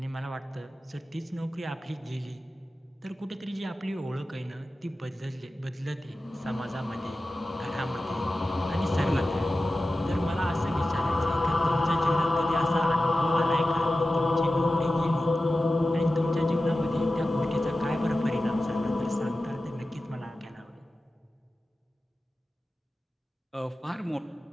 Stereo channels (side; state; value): both; normal; correlation 0.94